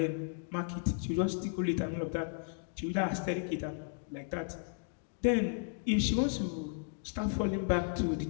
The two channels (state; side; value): silent; right; digital silence